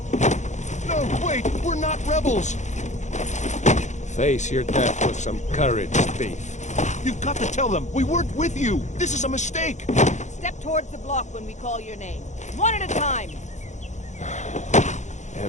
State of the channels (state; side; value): late; right; 0.34 ms